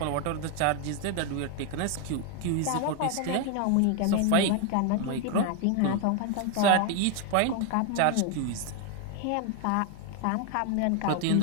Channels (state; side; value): different; both; correlation 0.01